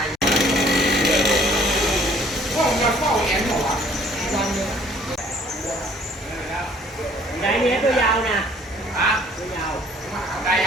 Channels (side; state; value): both; normal; correlation 0.57